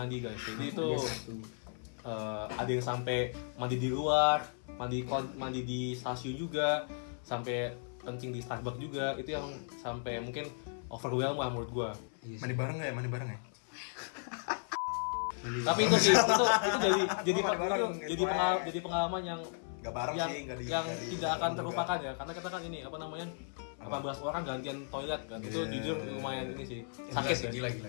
guys. Jadi itu ada yang sampai mandi di luar, mandi di stasiun juga, sampai kencing di Starbucks juga. Itu yang sampai mungkin overwhelm lah menurut gua. Mandi bareng ya? Tapi itu sih jadi pengalaman yang Gak bareng yang, sih, nggak di- yang nggak di- tidak akan juga. terlupakan ya, karena kita kan ini apa namanya 18 orang gantian toilet kan. Itu Iya. jujur lumayan ini sih Gila sakit sih, ya.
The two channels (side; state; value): right; silent; 54 dB below the other